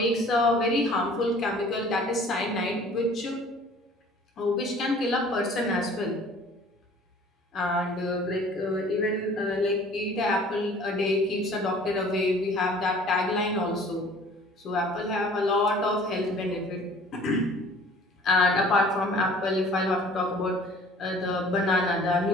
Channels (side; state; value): both; normal; correlation 0.50